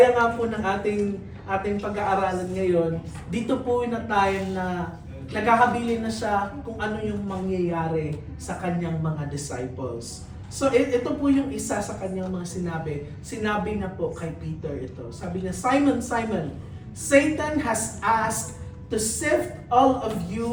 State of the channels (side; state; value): both; identical; correlation 1.00